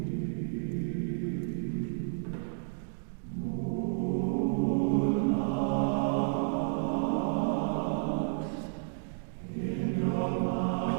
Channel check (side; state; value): left; silent; digital silence